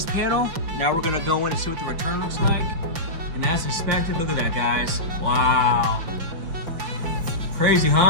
panel. Now we're gonna go in and see what the return looks like. And as expected, look at that, guys. Wow. Crazy,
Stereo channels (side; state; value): left; late; 5.8 ms